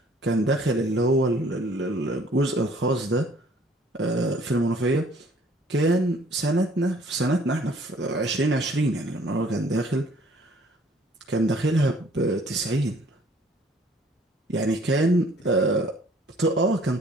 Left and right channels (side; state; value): both; normal; correlation 0.57